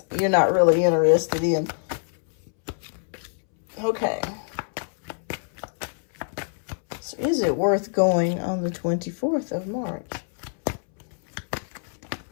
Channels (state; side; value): silent; right; 62 dB below the other